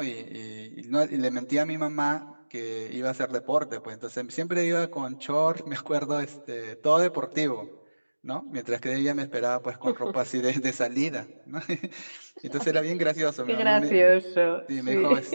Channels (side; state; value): both; inverted; correlation -1.00